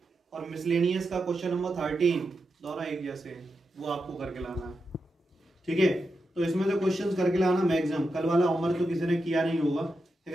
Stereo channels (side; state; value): both; normal; correlation 0.88